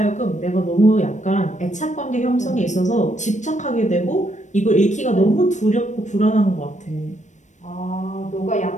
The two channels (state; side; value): late; right; 0.35 ms